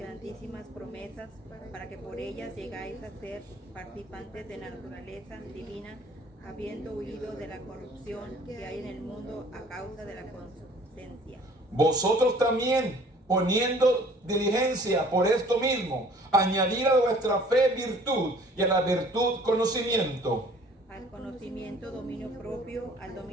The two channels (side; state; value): both; normal; correlation 0.53